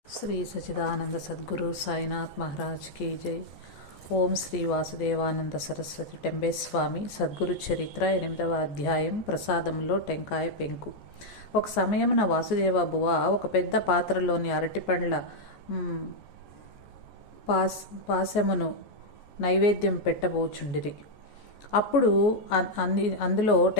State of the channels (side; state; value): right; late; 14 ms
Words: Shri Sachidananda Sadhguru Sainath Maharaj key జై. ఓం శ్రీ వాసుదేవానంద సరస్వతి టెంబేస్వామి సద్గురు చరిత్ర 8వ అధ్యాయం. ప్రసాదంలో టెంకాయ పెంకు. ఒక సమయమున వాసుదేవ బువ ఒక పెద్ద పాత్రలోని అరటిపండ్ల పాశమును నైవేద్యం పెట్టబోచుండిరి. అప్పుడు అందులో